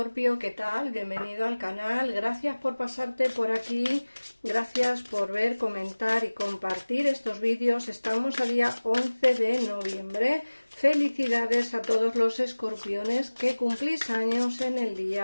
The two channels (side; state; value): both; inverted; correlation -1.00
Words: ¿qué tal? Bienvenido al canal, gracias por pasarte por aquí, gracias por ver, comentar y compartir estos vídeos. Estamos a día 11 de noviembre, felicidades a todos los escorpiones que cumplís años en el